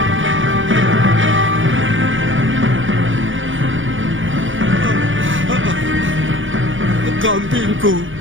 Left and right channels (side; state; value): left; late; 0.57 ms